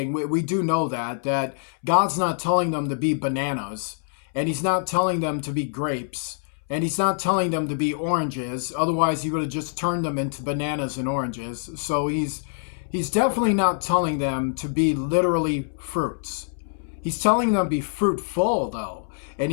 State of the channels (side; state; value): right; silent; 61 dB below the other